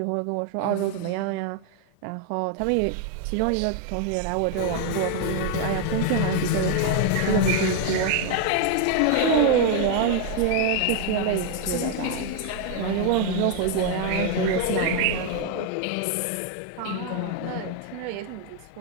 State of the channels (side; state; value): both; different; correlation 0.00